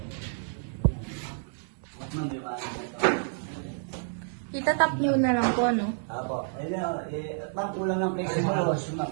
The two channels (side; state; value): left; silent; digital silence